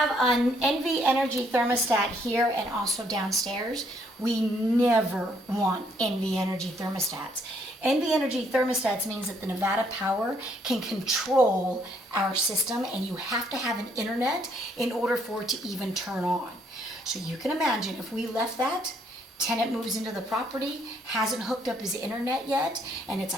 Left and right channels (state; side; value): normal; both; correlation 0.69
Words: an NV Energy thermostat here and also downstairs. We never want NV Energy thermostats. NV Energy thermostats means that the Nevada Power can control our system, and you have to have an internet in order for it to even turn on. So you can imagine if we left that, tenant moves into the property, hasn't hooked up his internet yet, and it's